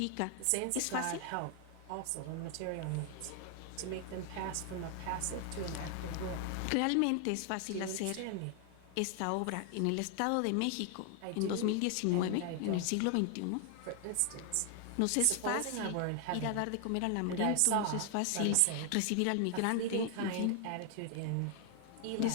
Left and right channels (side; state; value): both; different; correlation 0.00